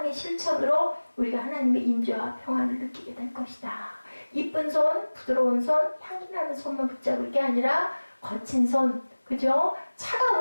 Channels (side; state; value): both; inverted; correlation -1.00